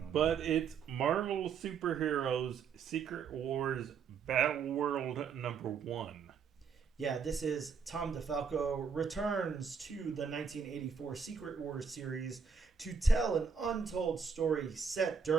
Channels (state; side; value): quieter; left; 6.0 dB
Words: But it's Marvel Superheroes Secret Wars Battle World #1. Yeah, this is Tom DeFalco returns to the 1984 Secret Wars series to tell an untold story set